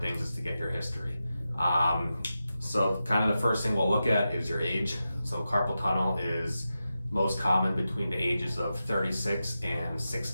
is to get your history. So kind of the first thing we'll look at is your age. So carpal tunnel is most common between the ages of 36 and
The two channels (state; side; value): inverted; both; correlation -0.91